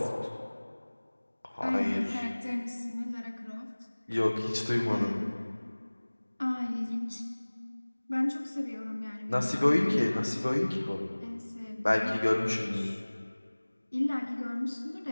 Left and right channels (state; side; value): inverted; both; correlation -1.00